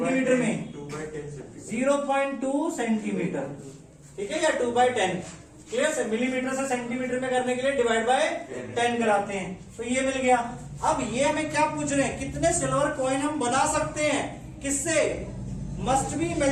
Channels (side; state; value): both; identical; correlation 1.00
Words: में? 0.2 सेंटीमीटर, ठीक है, या 2/10। क्लियर से मिलीमीटर से सेंटीमीटर में करने के लिए डिवाइड बाय 10 कराते हैं, तो ये मिल गया। अब ये हमें क्या पूछ रहे हैं? कितने सिल्वर कॉइन हम बना सकते हैं? किससे? Must be